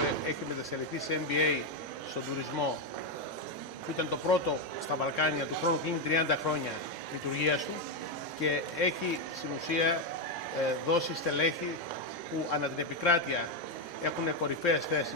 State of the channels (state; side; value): normal; both; correlation 0.05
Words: έχει μετασελιχθεί σε MBA στον τουρισμό, που ήταν το πρώτο στα Βαλκάνια, του χρόνου κλείνει 30 χρόνια λειτουργίας του και έχει στην ουσία δώσει στελέχη που ανά την επικράτεια έχουν κορυφαίες